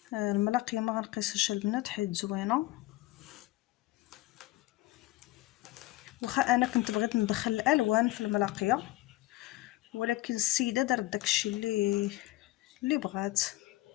الملاقيه ما غنقيسهاش البنات حيت زوينه. واخا انا كنت بغيت ندخل الالوان في الملاقيه، ولكن السيده دارت داكشي اللي بغات.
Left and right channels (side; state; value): right; quieter; 18.1 dB